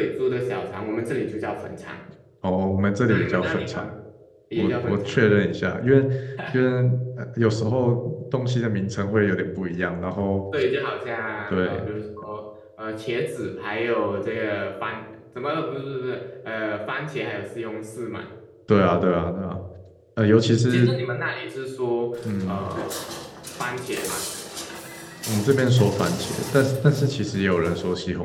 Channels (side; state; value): both; identical; correlation 1.00